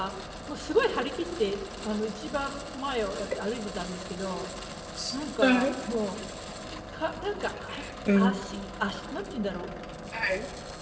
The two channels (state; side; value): identical; both; correlation 1.00